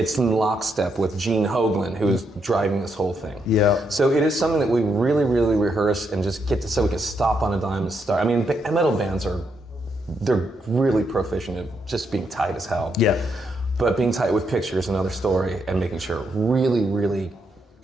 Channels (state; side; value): normal; both; correlation 0.79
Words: in lockstep with Gene Hoglan, who is driving this whole thing. So it is something that we really, really rehearse and just get to, so we can stop on a dime and start. I mean, metal bands they're really proficient at just being tight as hell. But being tight with pictures, another story, and making sure it really, really